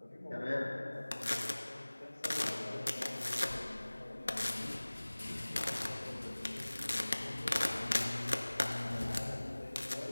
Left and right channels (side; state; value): both; inverted; correlation -1.00